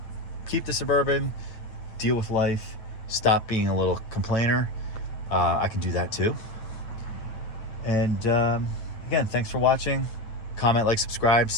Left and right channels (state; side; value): late; right; 8.8 ms